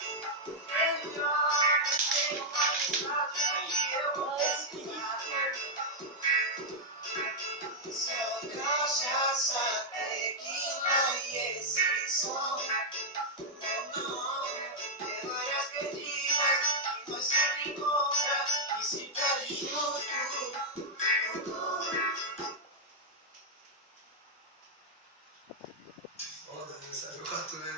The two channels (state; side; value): normal; both; correlation -0.02